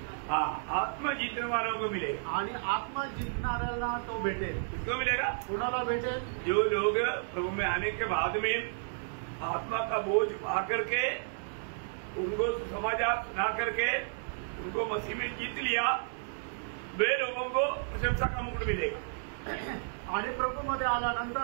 हाँ, आत्मा जीतने वालों को मिलेगा। आणि आत्मा जिंकणाऱ्याला तो भेटेल। किसको मिलेगा? कोणाला भेटेल? जो लोग प्रभु में आने के बाद में आत्मा का बोझ पा करके, उनको समाचार सुना करके उनको मसीह में जीत लिया, वे लोगों को प्रशंसा का मुकुट मिलेगा। आणि प्रभूमध्ये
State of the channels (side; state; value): left; silent; digital silence